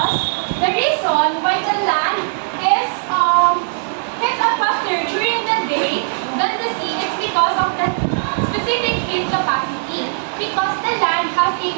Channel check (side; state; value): left; silent; 65 dB below the other